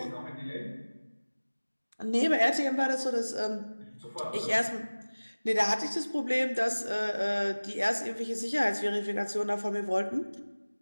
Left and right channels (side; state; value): both; inverted; correlation -1.00